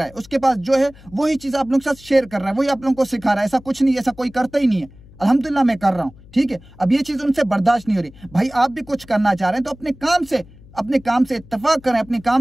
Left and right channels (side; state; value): left; noise; hum, 23 dB below the sound